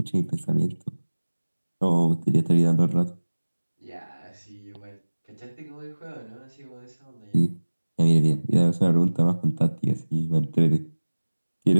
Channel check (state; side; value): inverted; both; correlation -1.00